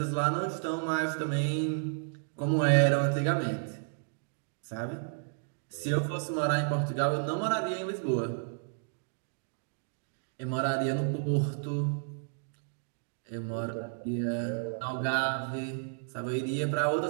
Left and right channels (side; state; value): left; silent; digital silence